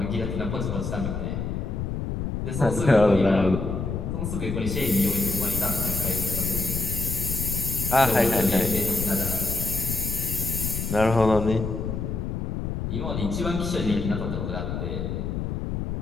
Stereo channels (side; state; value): left; noise; rumble, 3 dB below the sound